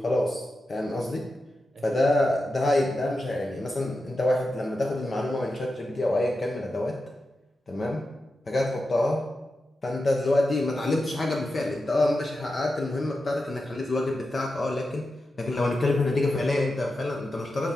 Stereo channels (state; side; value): normal; both; correlation 0.90